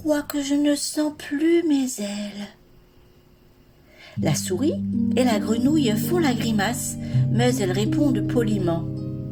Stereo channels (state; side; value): identical; both; correlation 1.00